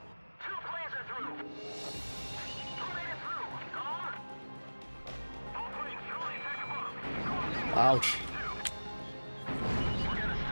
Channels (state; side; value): inverted; both; correlation -1.00